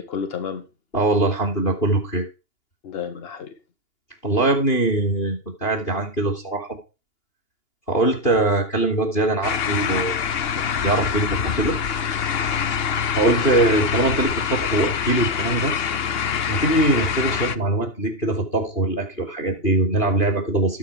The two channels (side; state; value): right; late; 2.8 ms